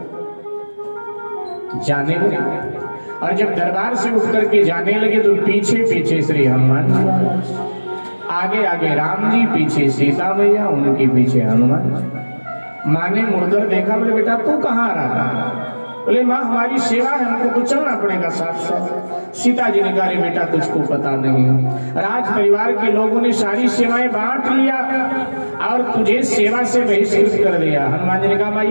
जाने लगे। और जब दरबार से उठ करके जाने लगे तो पीछे पीछे श्री हनुमान जी, आगे आगे राम जी, पीछे सीता मैया, उनके पीछे हनुमान जी। माँ ने मुड़कर देखा, बोले बेटा तू कहाँ आ रहा? बोले माँ हमारी सेवा है, हमको तो चलना पड़ेगा साथ साथ। सीता जी ने कहा बेटा तुझको पता नहीं, राज परिवार के लोगों ने सारी सेवाएं बांट लिया और तुझे सेवा से बहिष्कृत कर दिया। हनुमान जी ने कहा माँ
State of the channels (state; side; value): inverted; both; correlation -1.00